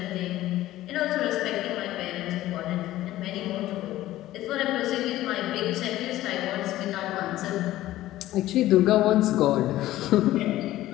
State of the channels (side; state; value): right; quieter; 15.2 dB